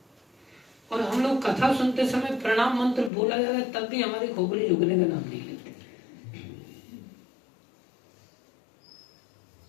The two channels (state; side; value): drops out; right; at 3.1 s